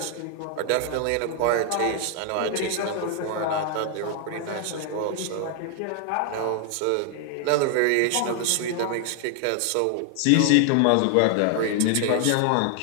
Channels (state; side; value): different; both; correlation 0.00